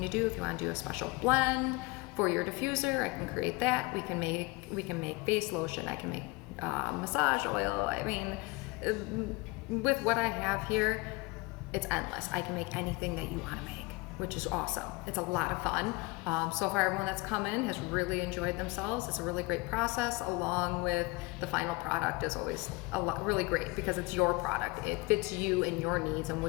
to do, if you want to do a special blend for your diffuser, I can create that. We can make face lotion. I can make massage oil. I mean, with what I have here, it's endless. I can make anything that you want to make, which is awesome. It's a lot of fun. So far, everyone that's come in has really enjoyed themselves. It's a really great process, along with the final product is always really great because it's your product. It fits you and your needs and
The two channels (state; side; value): quieter; right; 24.6 dB